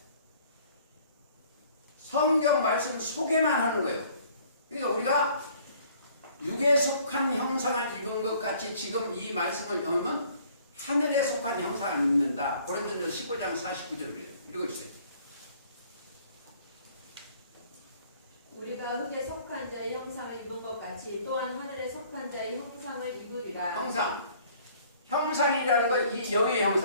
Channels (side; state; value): both; inverted; correlation -0.57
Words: 성경 말씀 소개만 하는 거예요. 그러니까 우리가 육에 속한 형상을 입은 것 같이 지금 이 말씀을 하면 하늘에 속한 형상을 입는다. 고린도전서 15장 49절을 그래요. 읽어주세요. 우리가 흙에 속한 자의 형상을 입은 것 같이 또한 하늘에 속한 자의 형상을 입으리라. 형상이라는 건 이 영의